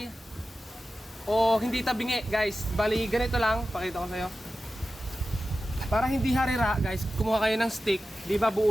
o hindi tabingi, guys. Bali, ganito lang. Pakita ko sa'yo. Para hindi harira, guys, kumuha kayo ng stick. Di ba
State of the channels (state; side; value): normal; both; correlation 0.93